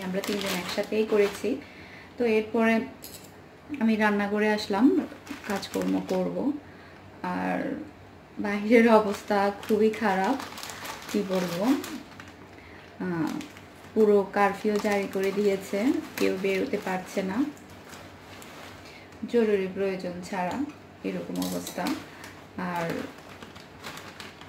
আমরা তিনজন একসাথেই করেছি। তো এরপরে আমি রান্না করে আসলাম, কাজকর্ম করব। আর বাহিরের অবস্থা খুবই খারাপ, কি বলবো। পুরো কারফিউ জারি করে দিয়েছে, কেউ বেরোতে পারছে না জরুরি প্রয়োজন ছাড়া, এরকম অবস্থা। আর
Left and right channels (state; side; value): identical; both; correlation 1.00